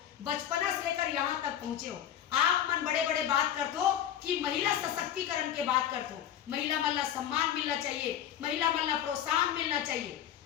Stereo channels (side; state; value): right; quieter; 10.3 dB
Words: बचपना से लेकर यहाँ तक पहुंचे हो। आप मन बड़े बड़े बात करते हो कि महिला सशक्तिकरण के बात करते हो, महिला मन ला सम्मान मिलना चाहिए, महिला मन ला प्रोत्साहन मिलना चाहिए।